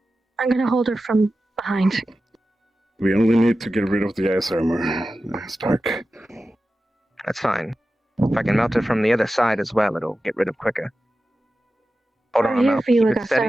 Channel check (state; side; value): normal; both; correlation 0.94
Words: I'm gonna hold her from behind. We only need to get rid of the ice armor, Stark. That's fine. If I can melt it from the other side as well, it'll get rid of quicker. Hold We're on, here now. for you, Keep it Augusta,